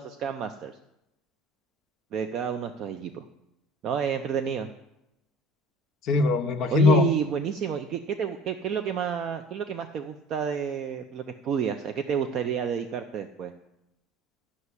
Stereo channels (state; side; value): normal; both; correlation 0.45